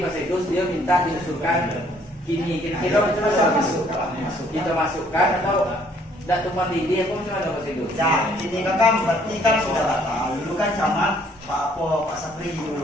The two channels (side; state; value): both; normal; correlation 0.63